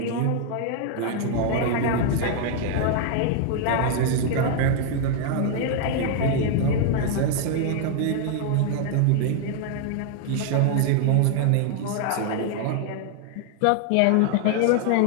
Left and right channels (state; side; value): different; both; correlation 0.00